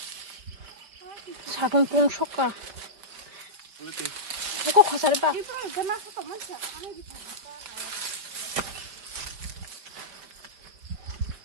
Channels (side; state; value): left; late; 5.0 ms